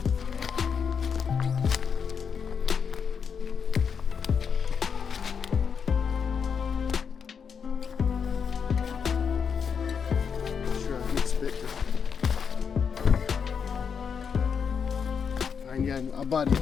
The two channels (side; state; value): right; quieter; 6.6 dB